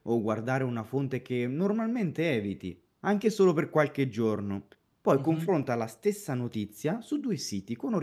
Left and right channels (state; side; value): identical; both; correlation 1.00